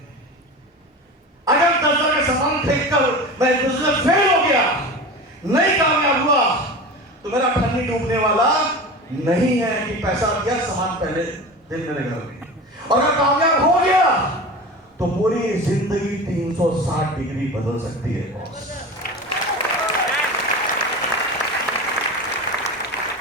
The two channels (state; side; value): normal; both; correlation 0.30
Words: अगर 10,000 का सामान खरीदकर मैं बिजनेस फेल हो गया, नहीं कामयाब हुआ, तो मेरा ठन्नी डूबने वाला नहीं है कि पैसा दिया, सामान पहले दिन मेरे घर में। और अगर कामयाब हो गया तो पूरी जिंदगी 360 डिग्री बदल सकती है बॉस।